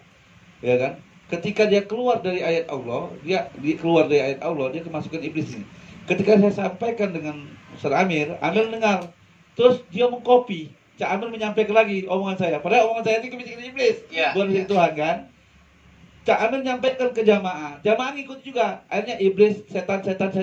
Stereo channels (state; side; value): identical; both; correlation 1.00